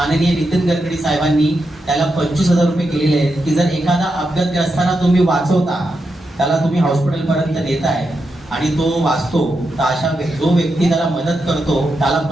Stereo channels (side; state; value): both; normal; correlation 0.86